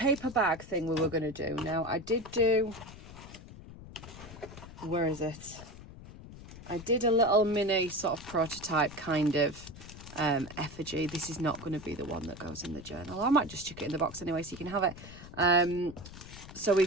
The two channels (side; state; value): left; noise; rumble, 15 dB below the sound